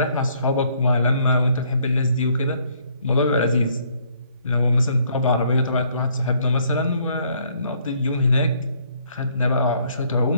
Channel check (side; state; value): both; inverted; correlation -0.66